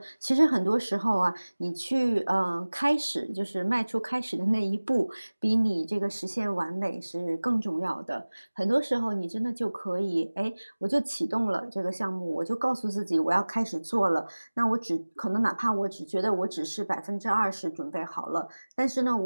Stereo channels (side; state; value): both; inverted; correlation -1.00